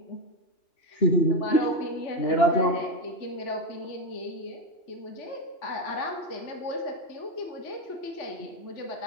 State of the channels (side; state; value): right; late; 2.9 ms